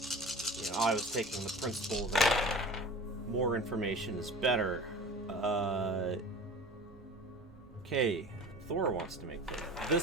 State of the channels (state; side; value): noise; right; hum, 25 dB below the sound